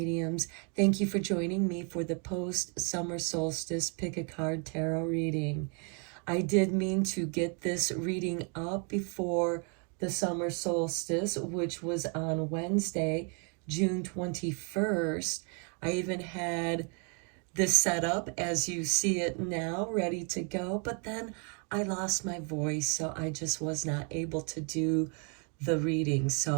Thank you for joining me for the post-summer solstice pick a card tarot reading. I did mean to get this reading up before the summer solstice, which was on Wednesday, June 21st. I even had this set up as you see it now, ready to go, but then I lost my voice, so I just was not able to do the reading.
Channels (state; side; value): quieter; left; 37.8 dB